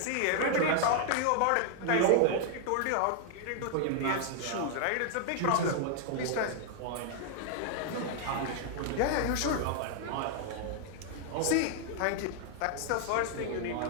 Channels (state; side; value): different; both; correlation 0.00